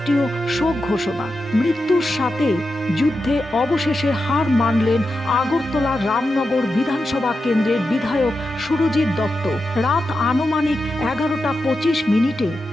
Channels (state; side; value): normal; both; correlation 0.89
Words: শোক ঘোষণা। মৃত্যুর সাথে যুদ্ধে অবশেষে হার মানলেন আগরতলা রামনগর বিধানসভা কেন্দ্রের বিধায়ক সুরজিৎ দত্ত। রাত আনুমানিক 11:25